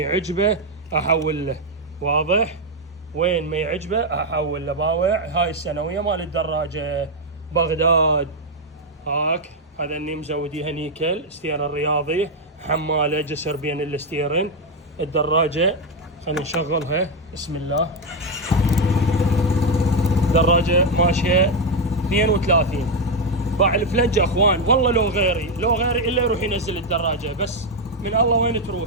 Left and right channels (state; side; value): normal; both; correlation 0.04